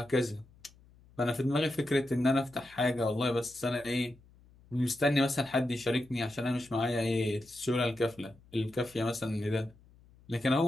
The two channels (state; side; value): noise; left; hum, 27 dB below the sound